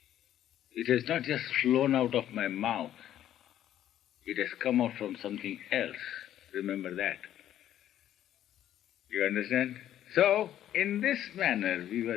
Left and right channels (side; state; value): right; quieter; 11.7 dB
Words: It has not just flown out of my mouth. It has come out from something else. Remember that. You understand? So, in this manner, we